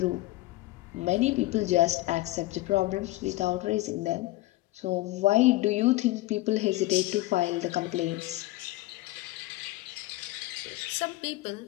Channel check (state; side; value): quieter; right; 18.4 dB